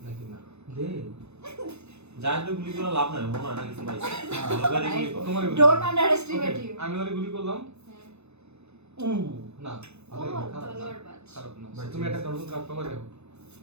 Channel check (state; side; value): late; left; 0.81 ms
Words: নাকি না দে যাই তো গুলি করে লাভ নাই মনে হয় না কিছু পাইছে ভালোবারে গুলি কর তোমারই গুলি ডোন্ট আন্ডারএস্টিমেট ইউ আমি ওরে গুলি করলাম উ না ভালো ও, খারাপ না। তলোয়ার বাজ। খারাপ না বাজ। তুমি একটা নতুন কার্ড পাবা দেখো